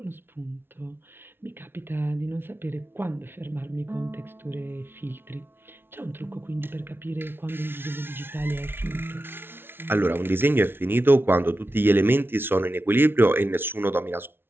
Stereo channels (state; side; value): late; left; 0.11 ms